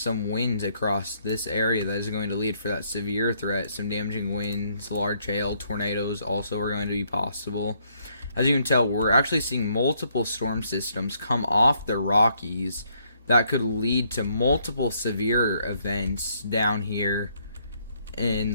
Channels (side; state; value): both; inverted; correlation -0.70